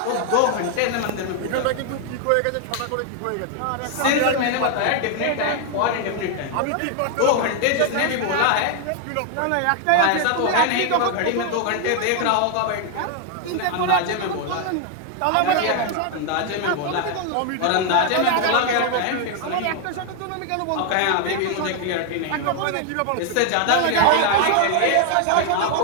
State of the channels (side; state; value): both; different; correlation 0.00